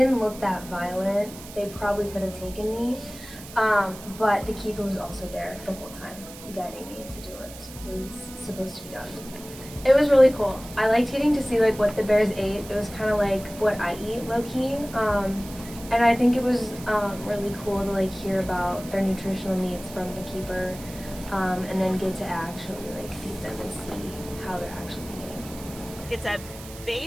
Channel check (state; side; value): noise; right; hiss, 16 dB below the sound